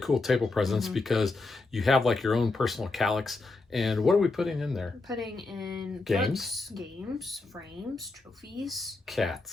table presence because you have like your own personal calyx. And what are we putting in there? We're putting in Games. Games, frames, trophies.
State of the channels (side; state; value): right; quieter; 3.5 dB